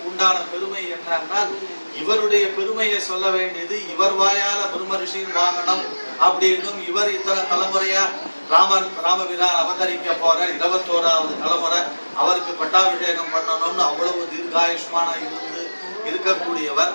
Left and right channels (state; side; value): inverted; both; correlation -1.00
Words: உண்டான பெருமை என்னன்னா இவருடைய பெருமையை சொல்ல வேண்டியது இவர் வாயால பிரம்ம ரிஷியின் வாங்கணும் அப்படின்னும் இவர் இத்தனை தலைமுறையா ராமபிரான் அவதரிக்க போற 21வது தலைமுறை அவருக்கு பட்டாபிஷேகம் பண்ணணும்னு அவ்வளவு தீர்காயுஷ்மான இருந்து இருக்கக்கூடியவர்.